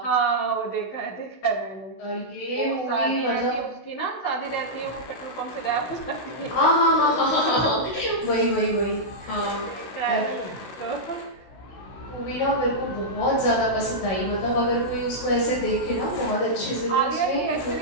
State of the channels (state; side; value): late; right; 16 ms